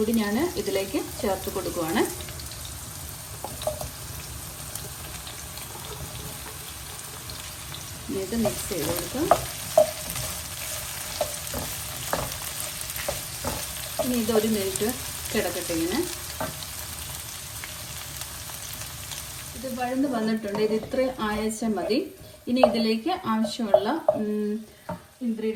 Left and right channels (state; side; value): identical; both; correlation 1.00